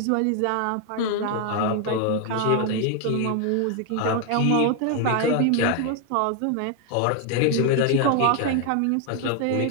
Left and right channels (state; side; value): different; both; correlation 0.01